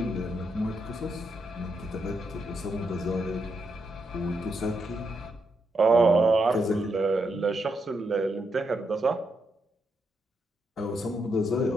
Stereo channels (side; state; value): both; normal; correlation 0.81